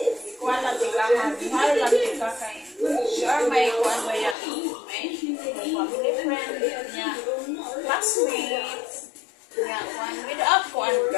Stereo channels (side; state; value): right; drops out; at 4.4 s